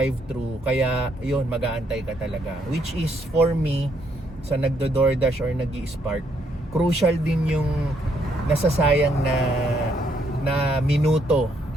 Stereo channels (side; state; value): both; normal; correlation 0.72